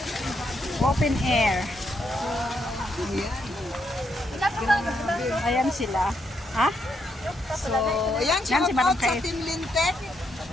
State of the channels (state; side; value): normal; both; correlation 0.78